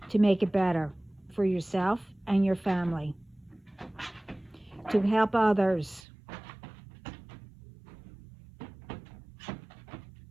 to make it better for yourself and your family, to help others,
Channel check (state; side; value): drops out; left; at 6.0 s